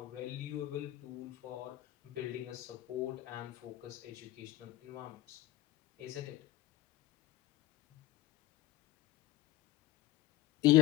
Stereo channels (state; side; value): quieter; right; 16.5 dB